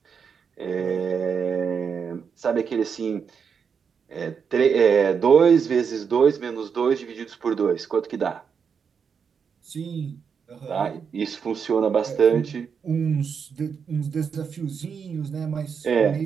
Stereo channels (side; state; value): left; quieter; 6.5 dB